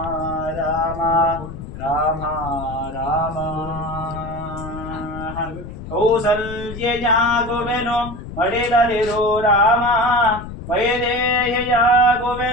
ರಾಮ ರಾಮ ರಾಮ ಕೌಸಲ್ಯಯಾಗುವೆನು ಮಡಿಲಲಿರೋ ರಾಮ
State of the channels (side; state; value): left; noise; rumble, 11 dB below the sound